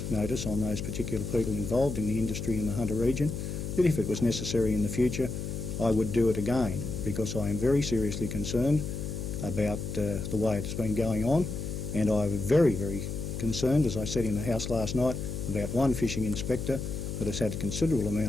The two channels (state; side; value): noise; left; hum, 5 dB below the sound